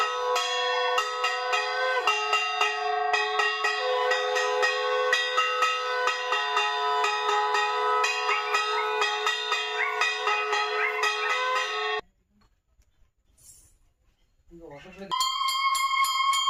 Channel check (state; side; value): identical; both; correlation 1.00